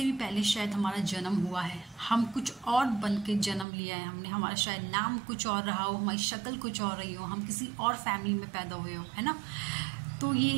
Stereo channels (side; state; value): left; drops out; at 3.7 s